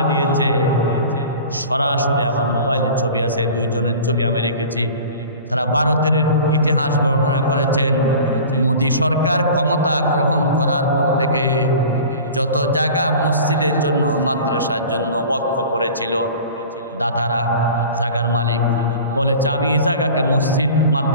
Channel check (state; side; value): inverted; both; correlation -0.40